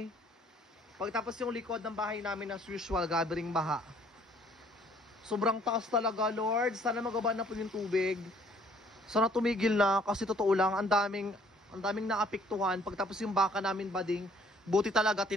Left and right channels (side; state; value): both; normal; correlation 0.60